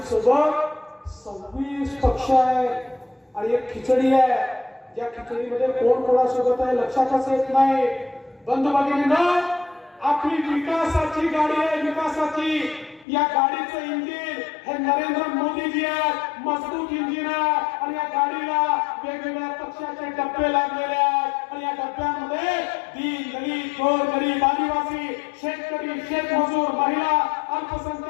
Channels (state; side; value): drops out; right; at 13.1 s